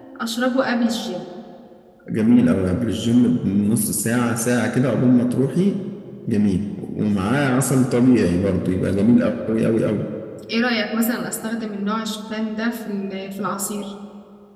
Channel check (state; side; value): identical; both; correlation 1.00